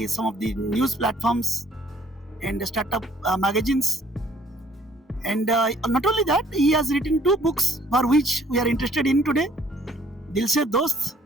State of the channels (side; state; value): both; normal; correlation 0.61